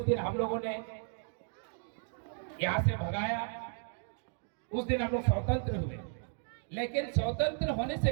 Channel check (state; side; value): silent; left; 55 dB below the other